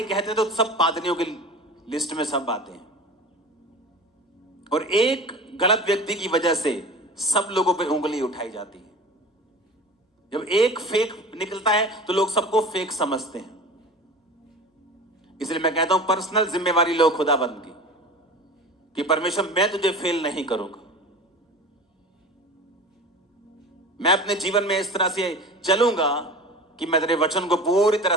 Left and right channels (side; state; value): both; normal; correlation 0.35